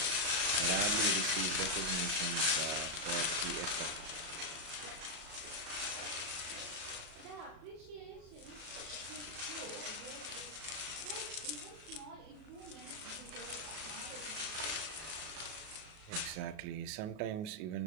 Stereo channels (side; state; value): left; late; 37 ms